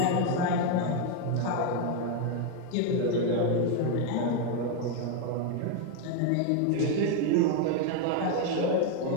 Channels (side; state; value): both; different; correlation 0.01